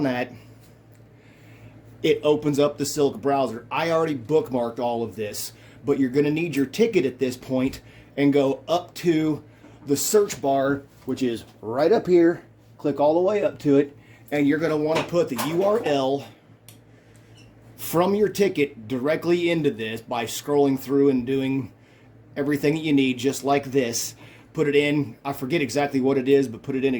that. It opens up the Silk browser. I already bookmarked all of this, but you're going to need your ticket at this point and go up to the search bar, which is right up here. Click all the way up to it, and you're going to want to put the URL from your ticket directly into this by scrolling through and doing everything that you need, just like this. Put it in, I forget exactly what it is, but put it in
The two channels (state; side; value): identical; both; correlation 1.00